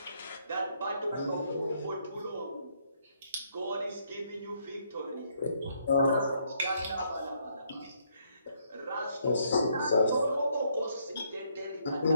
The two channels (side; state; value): both; inverted; correlation -0.72